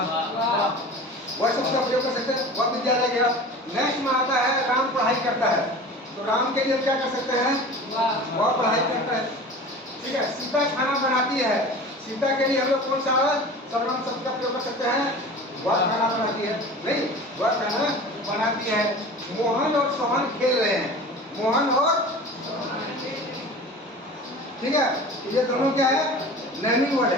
शब्द का प्रयोग कर सकते हैं, वह विद्यालय गया। नेक्स्ट में आता है राम पढ़ाई करता है, तो राम के लिए क्या कर सकते हैं? वह पढ़ाई करता है। ठीक है। सीता खाना बनाती है, सीता के लिए हम लोग कौन सा सर्वनाम शब्द का प्रयोग कर सकते हैं? वह खाना बनाती है, नहीं, वह खाना बनाती है। मोहन और सोहन खेल रहे हैं, मोहन और, ठीक है, ये दोनों क्या है? नेमिंग वर्ड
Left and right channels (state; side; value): normal; both; correlation 0.37